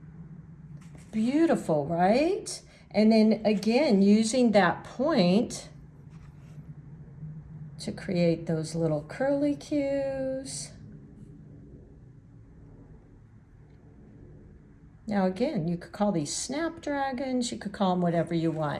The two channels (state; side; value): identical; both; correlation 1.00